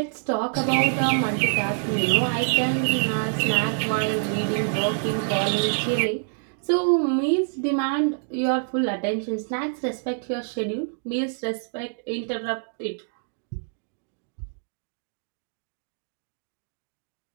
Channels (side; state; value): left; silent; digital silence